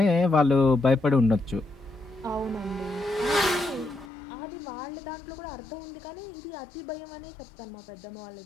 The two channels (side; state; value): right; drops out; at 4.1 s